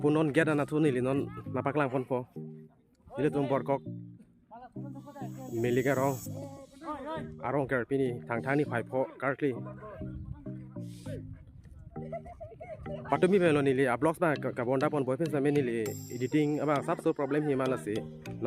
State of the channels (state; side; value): identical; both; correlation 1.00